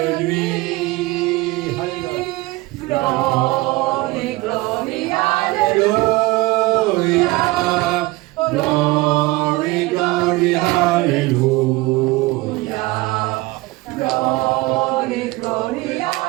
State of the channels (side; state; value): left; quieter; 20.9 dB